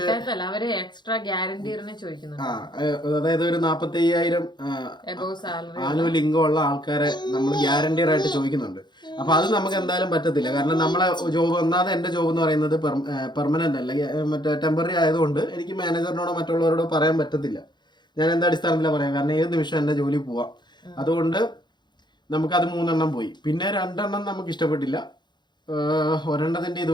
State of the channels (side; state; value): right; late; 0.21 ms